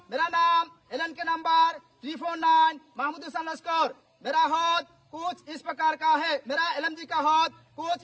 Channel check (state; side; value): identical; both; correlation 1.00